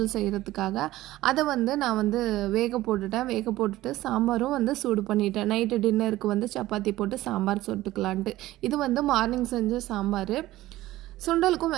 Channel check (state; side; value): quieter; left; 16.3 dB